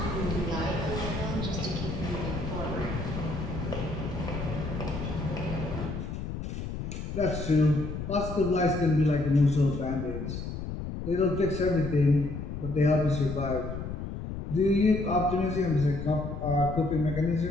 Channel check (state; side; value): noise; left; rumble, 6 dB below the sound